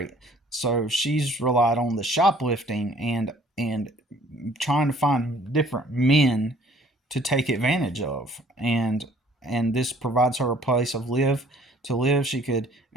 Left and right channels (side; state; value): both; normal; correlation 0.56